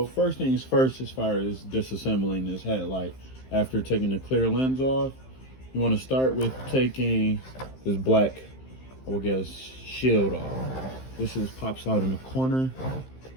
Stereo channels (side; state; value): right; late; 15 ms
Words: first things first, as far as disassembling this headlight, after taking the clear lens off, you want to start with taking this black, I would guess, shield off. This pops out in the corner.